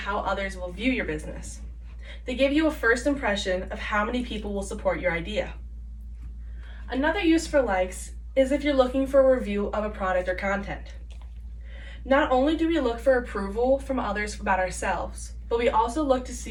others will view your business. They give you a first impression of how many people will support your idea. Another use for likes is if you're looking for a review of a product or content. Not only do we look for approval from others about ourselves, but we also look to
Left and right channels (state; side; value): identical; both; correlation 1.00